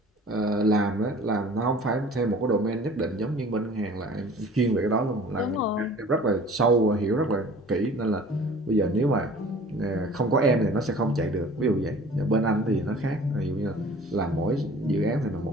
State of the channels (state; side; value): normal; both; correlation 0.47